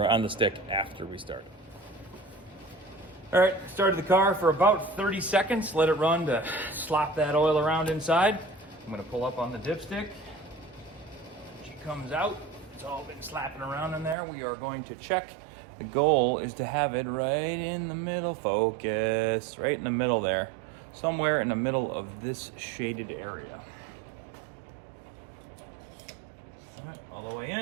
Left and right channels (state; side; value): drops out; left; at 14.2 s